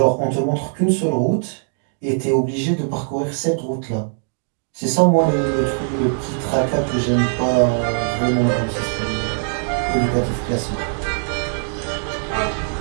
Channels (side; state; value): left; silent; digital silence